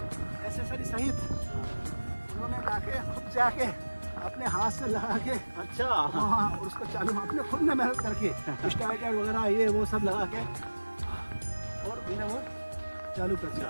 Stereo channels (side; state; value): both; inverted; correlation -1.00